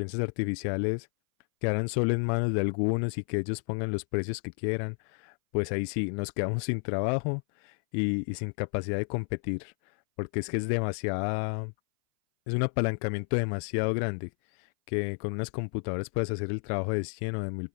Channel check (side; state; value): right; silent; 57 dB below the other